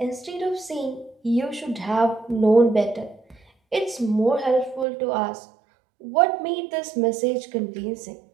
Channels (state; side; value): drops out; left; at 4.9 s